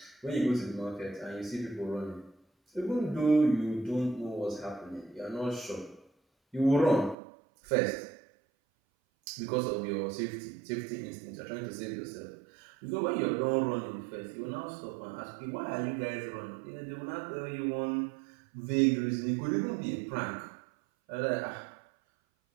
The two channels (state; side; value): drops out; left; at 7.2 s